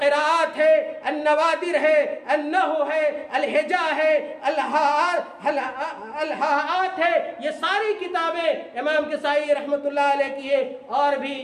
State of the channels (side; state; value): both; identical; correlation 1.00